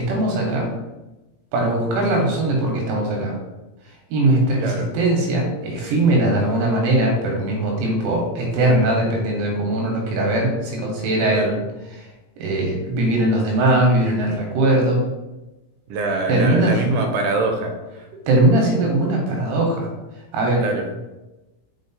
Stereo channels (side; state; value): left; late; 17 ms